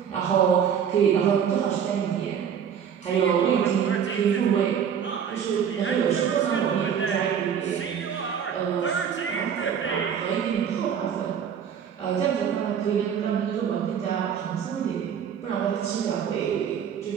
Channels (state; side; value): quieter; left; 8.0 dB